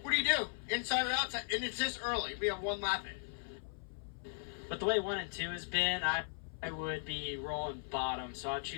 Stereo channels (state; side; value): silent; right; 53 dB below the other